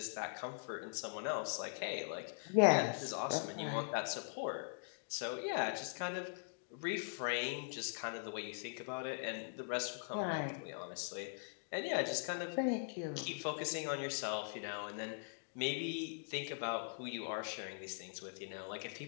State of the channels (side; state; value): right; silent; digital silence